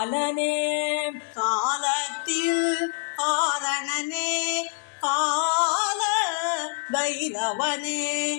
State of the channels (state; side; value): silent; right; digital silence